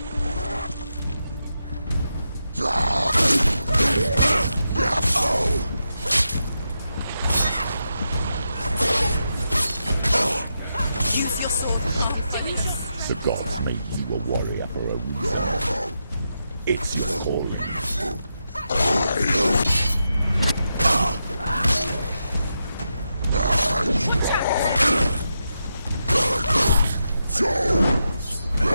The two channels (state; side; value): inverted; both; correlation -0.86